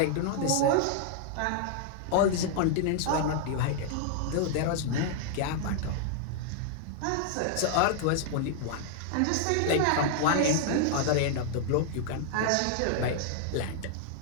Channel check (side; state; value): both; different; correlation -0.01